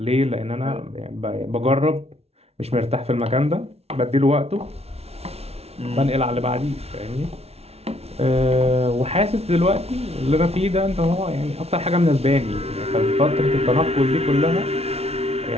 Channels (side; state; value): left; late; 0.30 ms